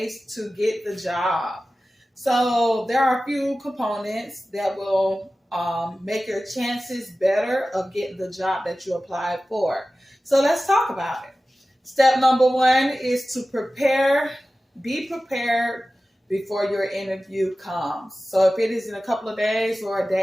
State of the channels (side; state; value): both; normal; correlation 0.95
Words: to get the job. So there are a few components that will make your chances better of getting the job that you applied for. So let's talk about it. Step number one is to prepare, be prepared before your interview comes. So if it is in a couple of days or a